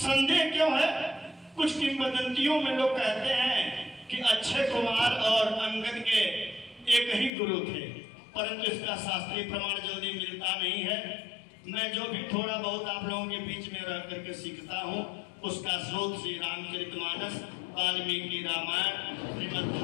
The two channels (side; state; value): right; drops out; at 7.3 s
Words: क्यों है? कुछ किंवदंतियों में लोग कहते हैं कि अक्षय कुमार और अंगद के एक ही गुरु थे, परंतु इसका शास्त्रीय प्रमाण जल्दी मिलता नहीं है। मैं जो भी थोड़ा बहुत आप लोगों के बीच में रह करके सीखता हूँ उसका स्रोत श्री रामचरितमानस, वाल्मीकि रामायण, श्रीमद्